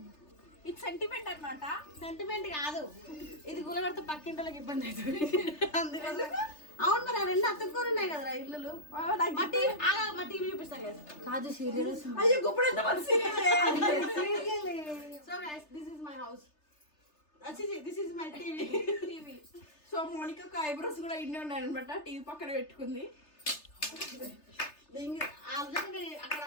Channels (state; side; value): late; right; 3.3 ms